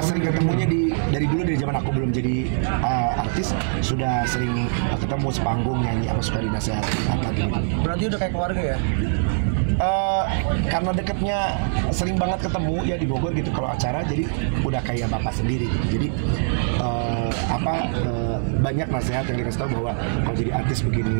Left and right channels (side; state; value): left; silent; 59 dB below the other